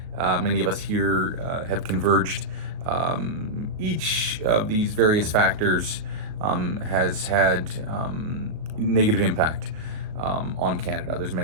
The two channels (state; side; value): late; left; 38 ms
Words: Many of us here have converged. Each of these various factors has had negative impact on Canada. There's